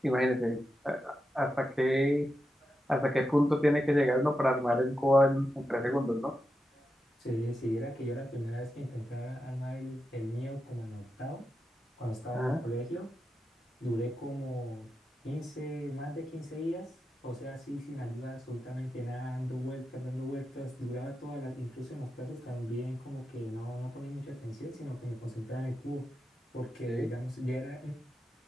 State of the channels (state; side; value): normal; both; correlation 0.88